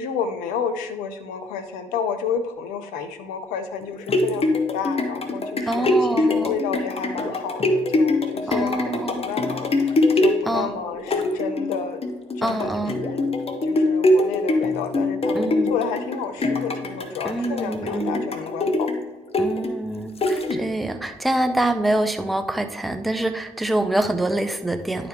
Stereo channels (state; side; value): normal; both; correlation 0.71